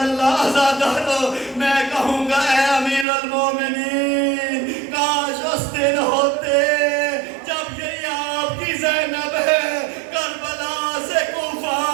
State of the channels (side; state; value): left; drops out; at 3.1 s